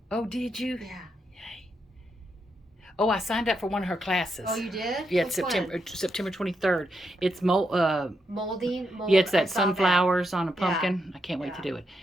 Oh, did you? Yeah. Yay. Oh, I signed up for one of her classes. Oh, you did? Yeah, it's Which one? September 23rd. It's Molding. yeah, it's I that saw sunflowers on a Yeah. pumpkin. I can't wait to Yeah. do it.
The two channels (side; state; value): both; normal; correlation 0.82